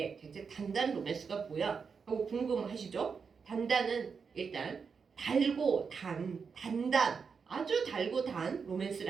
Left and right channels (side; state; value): left; quieter; 5.7 dB